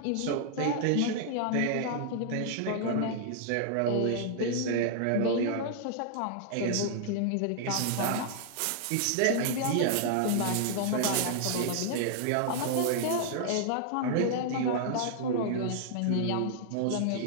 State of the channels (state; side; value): different; both; correlation -0.01